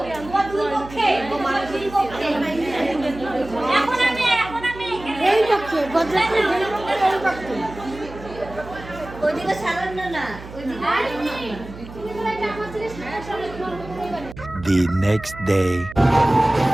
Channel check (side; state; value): right; noise; hum, 15 dB below the sound